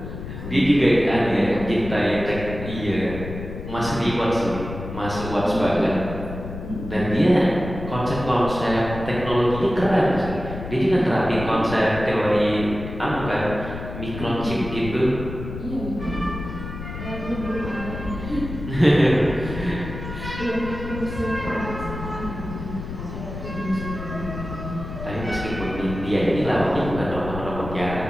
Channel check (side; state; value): left; noise; rumble, 9 dB below the sound